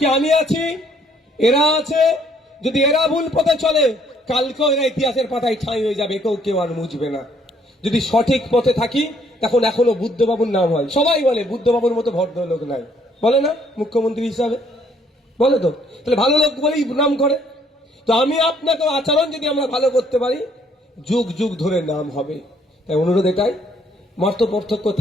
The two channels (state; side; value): normal; both; correlation 0.65